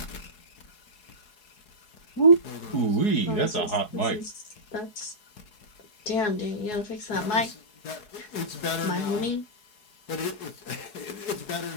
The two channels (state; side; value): late; right; 4.7 ms